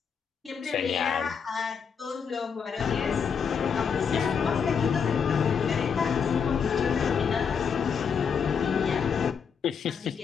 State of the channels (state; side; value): quieter; right; 6.6 dB